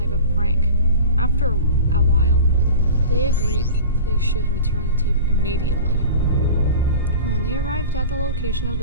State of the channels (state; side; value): inverted; both; correlation -0.36